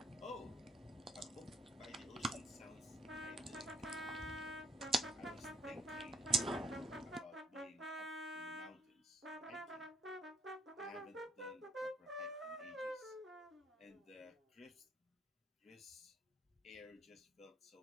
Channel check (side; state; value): both; normal; correlation 0.68